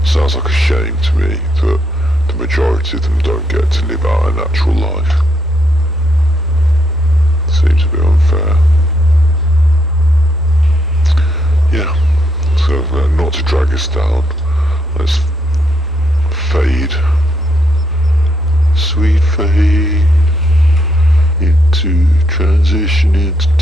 sounds like a shame to me that the majority of them don't get to live out a natural life. Seems a bit unfair. Yeah, so not to drag us down, let's fade, sweet fade, into transition into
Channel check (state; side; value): normal; both; correlation 0.76